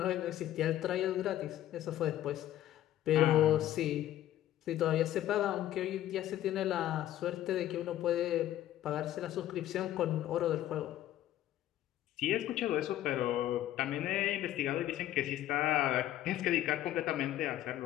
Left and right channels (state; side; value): quieter; right; 13.1 dB